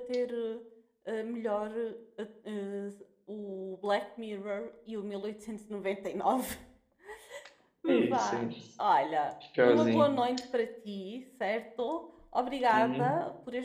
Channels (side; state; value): both; identical; correlation 1.00